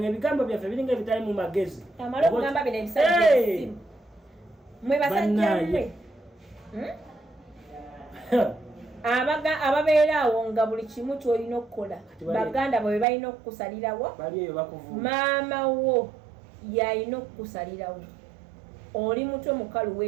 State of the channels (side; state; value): left; drops out; at 13.1 s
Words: ebigambo byaffe biringa ebitali mu magezi amala okugamba bino ebisajja mwe basajja mmwe ababeera awo nga buli kimu kyolina okukola baganda bwe balina okukusalirawo maama wo yalina okukusalirawo oli mutwe mukalu